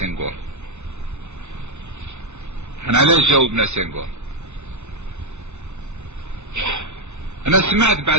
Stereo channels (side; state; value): left; late; 0.82 ms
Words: احنا علاش جاوبنا سنغور؟ انا سمعت